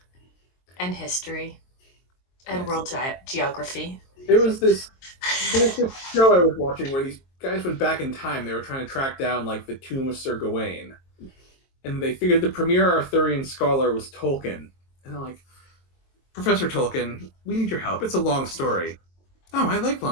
And history, and world geography. There was this show I was watching where these guys went back in time. They were trying to track down like the tomb of Sir Gawain, and they figured the premier Arthurian scholar was Tolkien. And they're like, Professor Tolkien, we need your help. It's a long story. Oh, I like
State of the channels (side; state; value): right; late; 22 ms